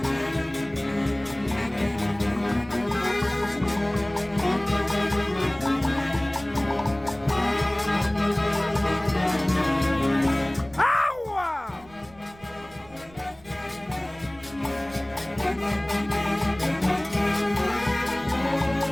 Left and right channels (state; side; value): noise; right; rumble, 24 dB below the sound